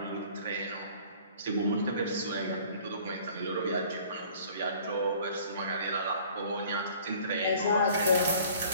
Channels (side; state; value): both; inverted; correlation -0.52